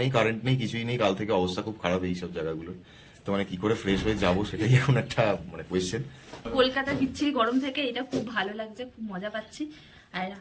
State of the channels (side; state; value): both; identical; correlation 1.00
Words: নেই, কারেন্ট নেই, কিছুই নেই। কাল থেকে অবস্থা খুব খারাপ এই সব জায়গাগুলো। তো মানে কি করে ফ্রেশ হয়ে যাবো সেটাই এখন একটা মানে কোয়েশ্চেন। কলকাতা বিচ্ছিরি গরম থেকে এটা খুব ভালো লাগছে, খুব মজা পাচ্ছি। আর